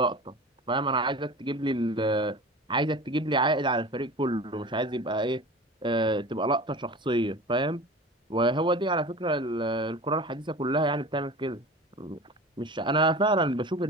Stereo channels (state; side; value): normal; both; correlation 0.36